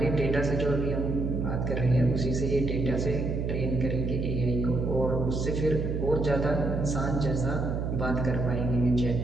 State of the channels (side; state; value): right; noise; hum, 1 dB below the sound